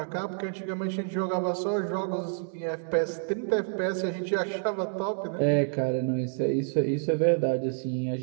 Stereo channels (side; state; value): left; silent; digital silence